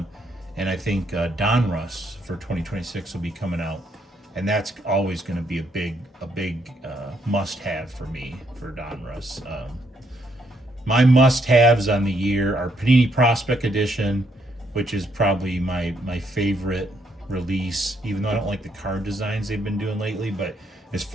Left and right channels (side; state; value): both; normal; correlation 0.73